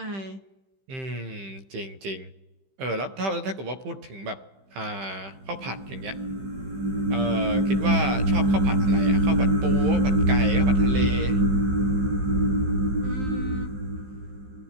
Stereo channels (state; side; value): late; left; 15 ms